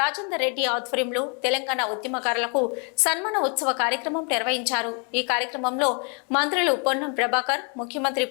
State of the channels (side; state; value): right; quieter; 37.5 dB